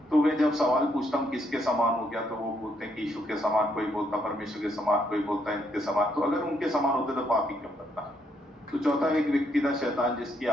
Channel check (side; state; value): both; normal; correlation 0.74